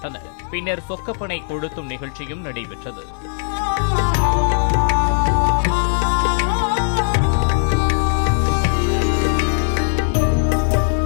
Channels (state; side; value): silent; right; 64 dB below the other